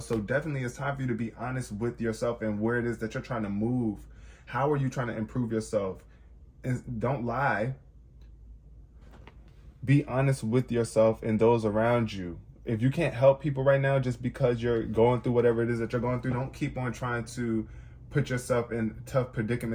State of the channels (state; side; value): identical; both; correlation 1.00